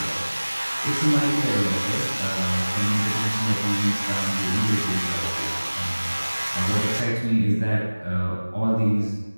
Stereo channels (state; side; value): inverted; both; correlation -1.00